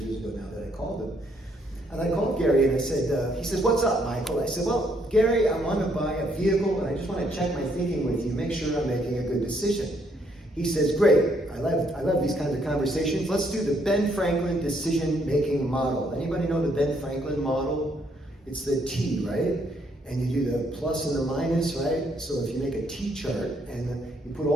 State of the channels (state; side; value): normal; both; correlation 0.71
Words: ago now that I called him. And I called Gary and I said, he says, "What's up, Michael?" I said, "Well, Gary, I want to buy a vehicle and I just want to check my thinking with you, make sure I'm making a good decision." He says, "Great, I love these kinds of conversations. Let's do the Ben Franklin decision-making model." Anybody know the Ben Franklin model? It's the T, right? And you do the plus and the minus, right? So if you make a T chart and you put